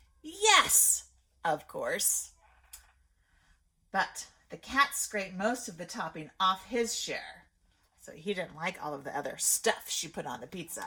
yes, of course. But the cat scraped most of the topping off his share. So he didn't like all of the other stuff she put on the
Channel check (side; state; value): both; identical; correlation 1.00